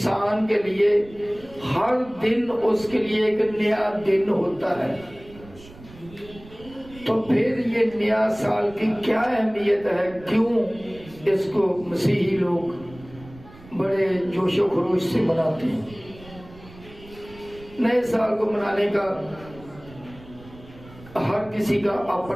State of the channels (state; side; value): noise; right; rumble, 21 dB below the sound